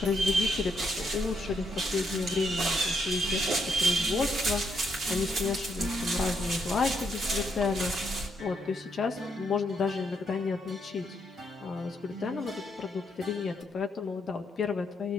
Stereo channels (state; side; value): normal; both; correlation 0.77